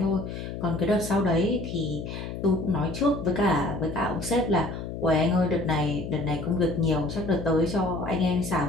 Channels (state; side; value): noise; left; hum, 7 dB below the sound